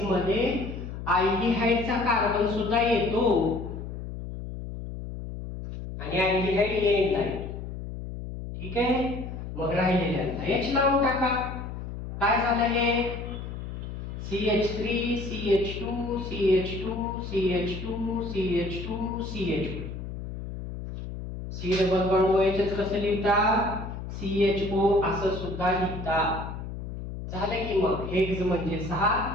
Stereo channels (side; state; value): left; noise; hum, 8 dB below the sound